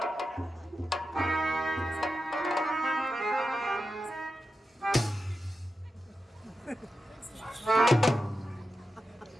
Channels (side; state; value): both; normal; correlation 0.90